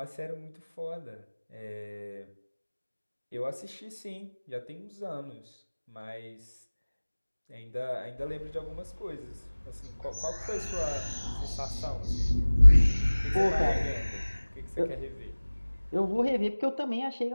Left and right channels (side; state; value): both; inverted; correlation -1.00